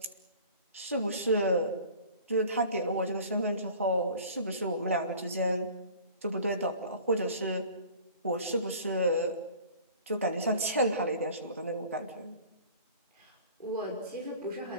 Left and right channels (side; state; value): both; inverted; correlation -0.45